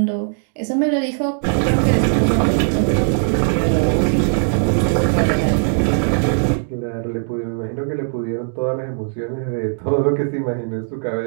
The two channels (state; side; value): silent; left; 66 dB below the other